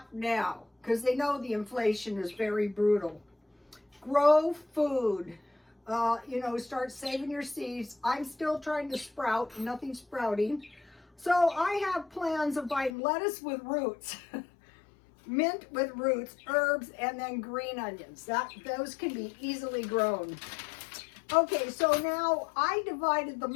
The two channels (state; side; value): drops out; right; at 12.9 s